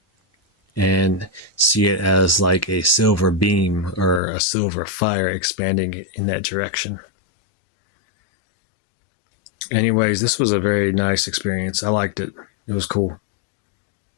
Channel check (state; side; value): drops out; right; at 4.2 s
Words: And see it as like a silver beam or a silver fire expanding in that direction. Anyways, this was a very nice experience. I liked it. It was cool.